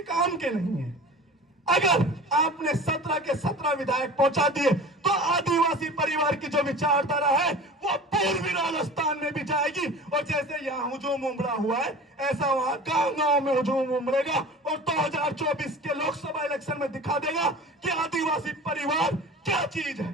काम के नहीं है। अगर आपने 17 के 17 विधायक पहुंचा दिए तो आदिवासी परिवार की जो विचारधारा है वो पूर्वी राजस्थान में भी जाएगी और जैसे यहाँ हुजूम उमड़ा हुआ है ऐसा वहां गांव-गांव में हुजूम उमड़ेगा और 2024 के लोकसभा इलेक्शन में दिखा देगा कि आदिवासी परिवार क्या चीज है।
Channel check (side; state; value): both; normal; correlation 0.39